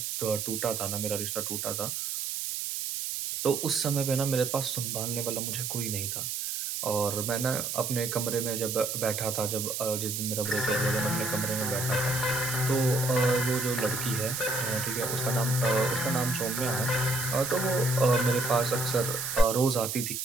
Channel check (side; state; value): right; noise; hiss, 3 dB below the sound